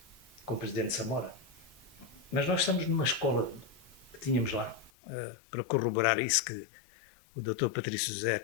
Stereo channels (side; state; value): right; drops out; at 4.9 s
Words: com o presidente Samora, mas nós estamos numa escola que tínhamos lá, para corroborar isso que o Dr. Patrício José